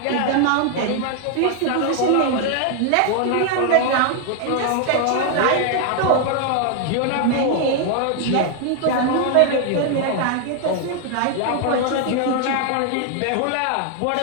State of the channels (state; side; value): different; both; correlation 0.00